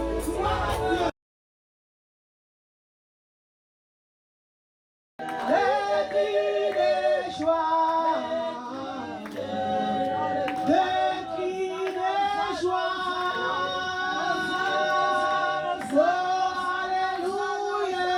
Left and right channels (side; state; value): both; identical; correlation 1.00